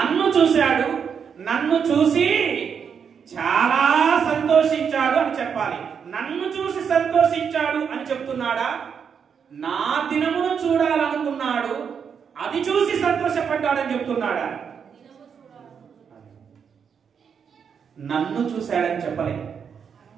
చూశాడు, నన్ను చూసి చాలా సంతోషించాడు అని చెప్పాలి. నన్ను చూసి సంతోషించాడు అని చెప్తున్నాడా? నా దినమును చూడాలనుకున్నాడు, అది చూసి సంతోషపడ్డాడని చెప్తున్నాడా? నన్ను చూశాడని చెప్పలే.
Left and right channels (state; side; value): quieter; left; 6.9 dB